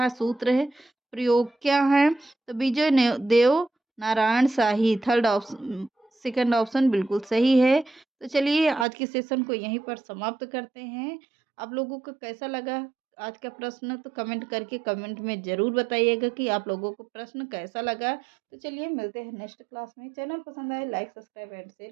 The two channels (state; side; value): drops out; left; at 8.8 s